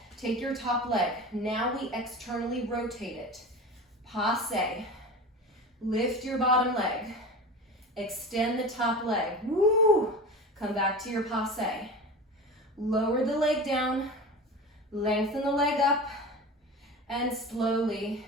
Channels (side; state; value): both; normal; correlation 0.31